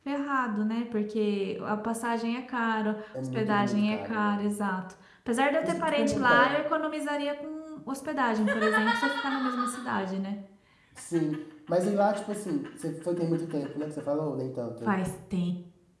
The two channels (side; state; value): both; identical; correlation 1.00